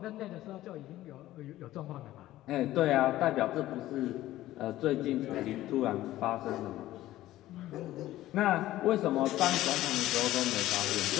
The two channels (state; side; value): quieter; right; 15.1 dB